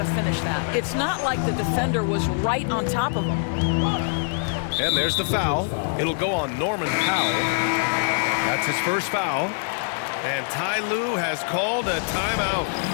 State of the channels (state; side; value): silent; right; 63 dB below the other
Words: finish that. It's not like the defender was right on top of him. And there's the foul. It'll go on Norman Powell. That's his first foul. And Ty Lue has called a timeout.